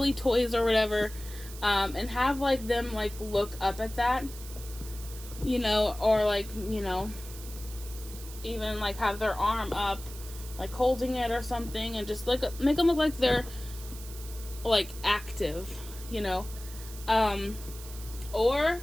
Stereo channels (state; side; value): noise; right; hiss, 15 dB below the sound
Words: toys or whatever, and have like them like look up at that, you know, or like, you know, even like have their arm up, like holding it or something, and just like make them look like they're like active, you know. Or